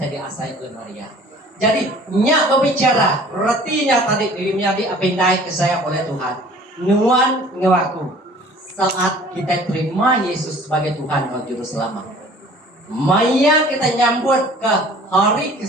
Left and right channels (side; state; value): both; normal; correlation 0.49